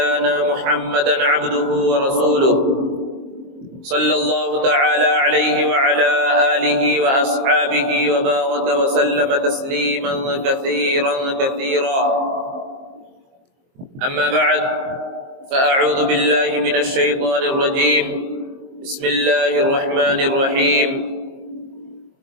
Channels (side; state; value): left; late; 23 ms